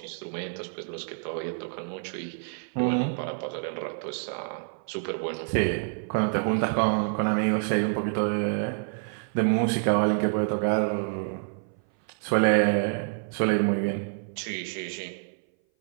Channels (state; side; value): silent; left; 58 dB below the other